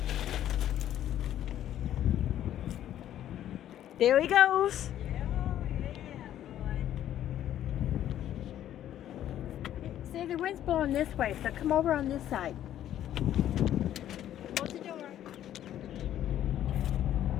There he goes. See, the wind's blowing this way, so come over on this side. Close the door.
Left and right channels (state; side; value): quieter; right; 11.6 dB